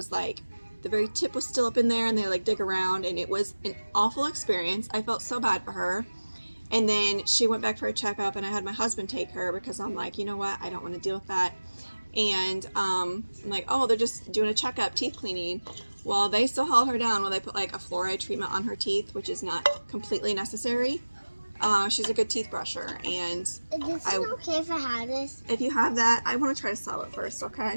like the very tip was still up in there, and they dig around, and it was an awful experience. I felt so bad for her. And then she went back for a checkup, and I had my husband take her because I'm like, you know what, I don't want to deal with that. And I'm like, oh, they're just doing a checkup, teeth cleaning. Well, they still held her down while they put a fluoride treatment on her teeth, which is not completely necessary. She's a good teeth brusher, and Is this okay if I have this? If you have that, I want to try to sell it first,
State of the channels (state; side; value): inverted; both; correlation -1.00